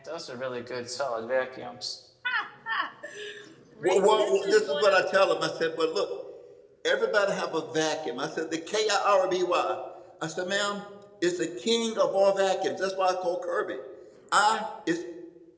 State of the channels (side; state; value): both; identical; correlation 1.00